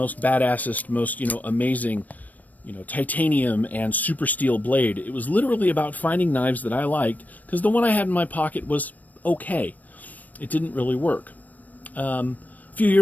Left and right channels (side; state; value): right; late; 0.078 ms